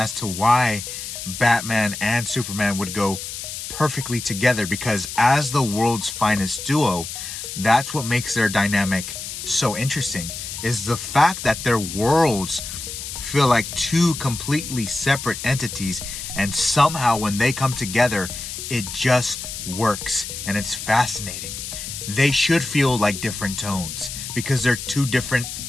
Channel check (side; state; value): left; noise; hiss, 8 dB below the sound